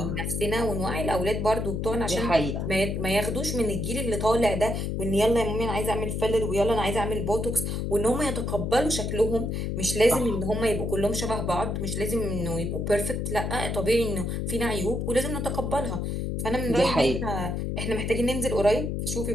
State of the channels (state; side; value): noise; left; hum, 2 dB below the sound